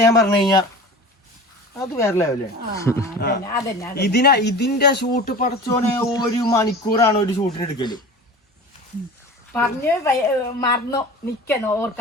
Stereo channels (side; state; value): both; normal; correlation 0.37